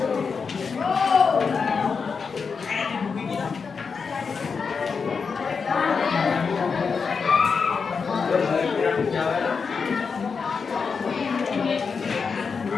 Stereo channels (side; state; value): right; quieter; 5.4 dB